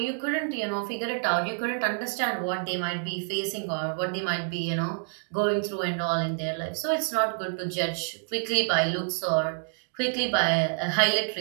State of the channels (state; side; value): silent; left; 59 dB below the other